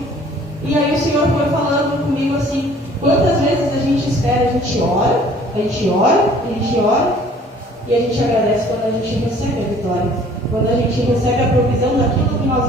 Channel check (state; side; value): normal; both; correlation 0.54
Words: E aí o Senhor foi falando comigo assim: quantas vezes a gente espera, a gente ora, a gente ora, a gente ora, e a gente agradece quando a gente recebe a vitória, quando a gente recebe a provisão daquilo que